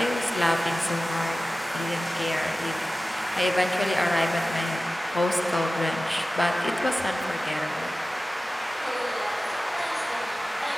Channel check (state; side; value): normal; both; correlation 0.96